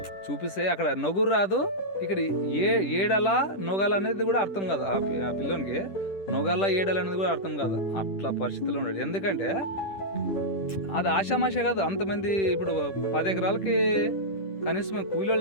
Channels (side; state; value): right; late; 10 ms